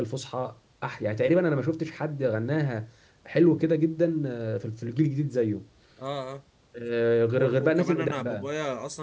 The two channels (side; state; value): both; identical; correlation 1.00